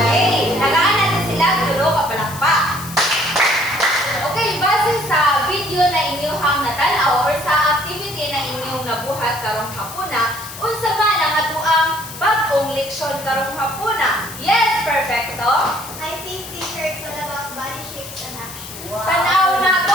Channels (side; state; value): left; noise; hiss, 13 dB below the sound